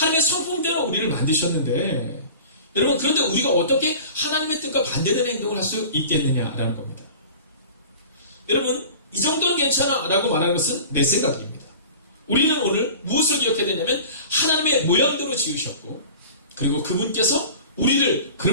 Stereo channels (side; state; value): both; inverted; correlation -0.40